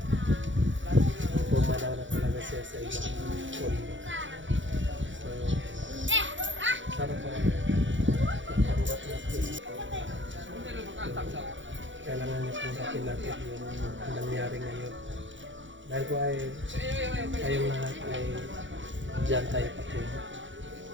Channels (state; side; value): late; left; 0.55 ms